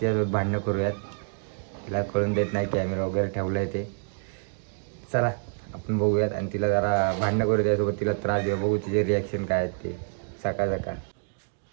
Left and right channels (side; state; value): left; silent; 60 dB below the other